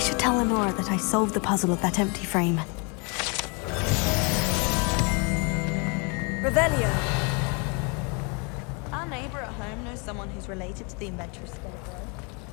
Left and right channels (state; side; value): quieter; right; 33.2 dB